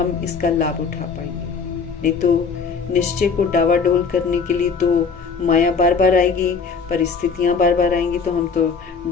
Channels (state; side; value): quieter; right; 5.4 dB